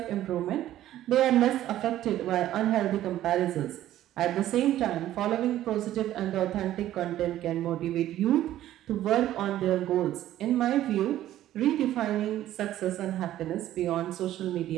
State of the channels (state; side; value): quieter; left; 13.2 dB